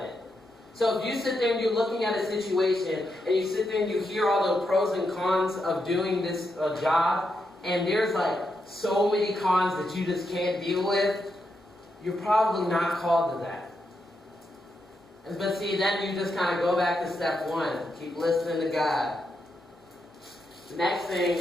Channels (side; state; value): both; normal; correlation 0.83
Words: it. So if you sit there and you're looking at a situation, and you sit there and you hear all the pros and cons of doing this job, and there's like so many cons that you just can't deal with, you're probably not called to that. But see, then you just kind of go back to step one. Keep listening to God. The next thing